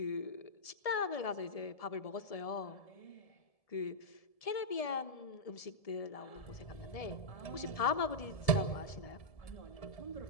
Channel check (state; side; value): late; right; 1.7 ms